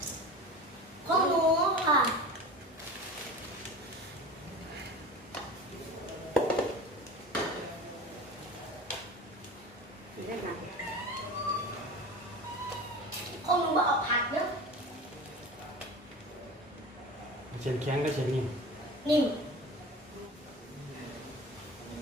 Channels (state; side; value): normal; both; correlation 0.34